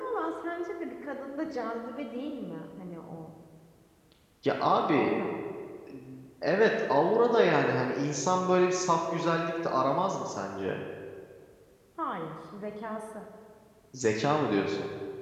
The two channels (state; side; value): identical; both; correlation 1.00